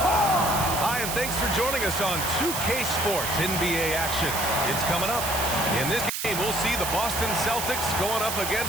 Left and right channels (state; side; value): noise; right; hiss, 3 dB below the sound